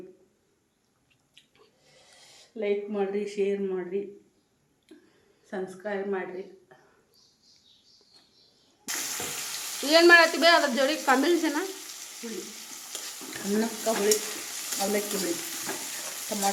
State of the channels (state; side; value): identical; both; correlation 1.00